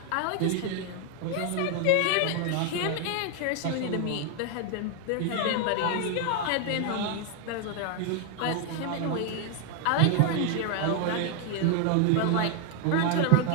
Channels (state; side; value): different; both; correlation 0.00